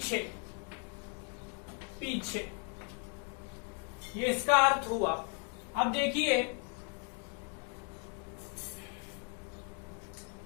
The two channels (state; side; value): quieter; right; 39.0 dB